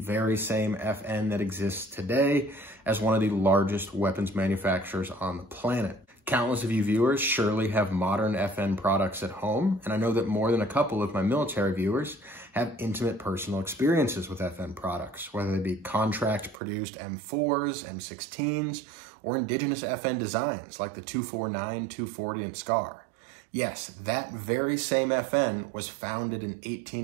same FN that exists today as one of the largest weapons manufacturers on the planet. Countless of you viewers surely have modern FN products at home, and I know that more than a couple of my military viewers have intimate personal experiences with FN products, whether they be contract-produced M4s, M16s, or indigenous FN designs like the 249, 240, and SCAR. Yes, that very same FN was founded in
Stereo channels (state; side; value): drops out; left; at 16.6 s